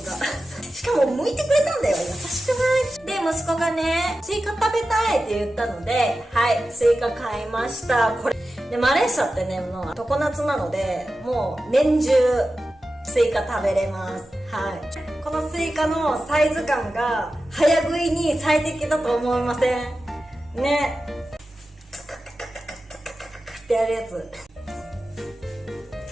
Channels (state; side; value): normal; both; correlation 0.93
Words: がしかも剥いてくれたんだよ。優しくない？で、息子がねスイカ食べたいって言ったので、はい、スイカ買いました。これでマレーシアってねもう常夏なので、もう年中スイカ食べれます。はい、このスイカのサイズ感が早食いに最適だと思いませんね。ってやるやつ、